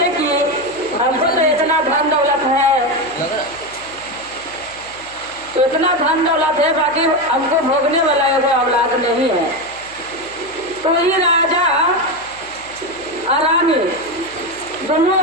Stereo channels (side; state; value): right; noise; hum, 25 dB below the sound